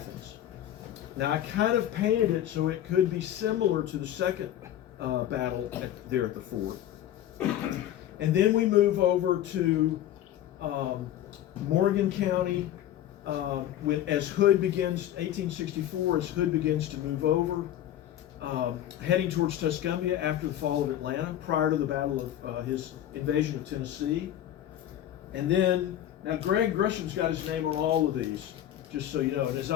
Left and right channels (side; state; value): right; quieter; 11.9 dB